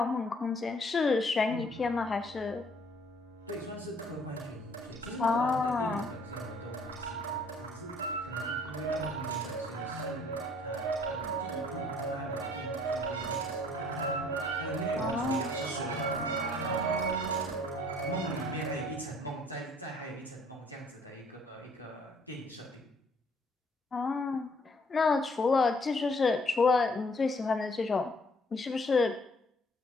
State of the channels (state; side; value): normal; both; correlation 0.60